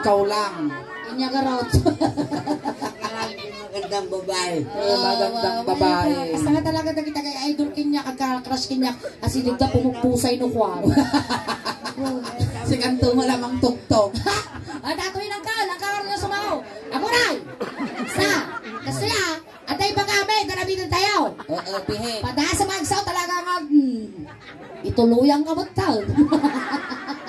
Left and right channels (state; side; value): identical; both; correlation 1.00